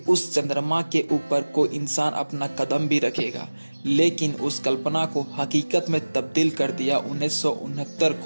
उस चंद्रमा के ऊपर कोई इंसान अपना कदम भी रखेगा, लेकिन उस कल्पना को हकीकत में तब्दील कर दिया 1969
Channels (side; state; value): both; inverted; correlation -1.00